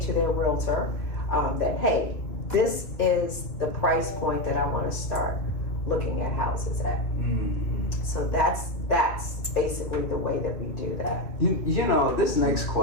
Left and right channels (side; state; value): right; late; 2.3 ms